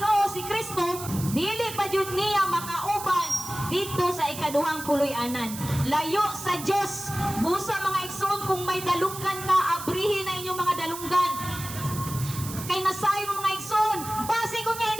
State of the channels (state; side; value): noise; right; hiss, 10 dB below the sound